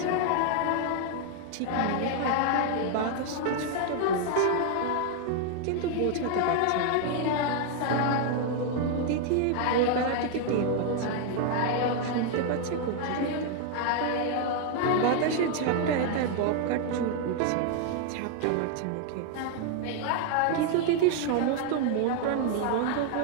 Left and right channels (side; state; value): both; different; correlation 0.00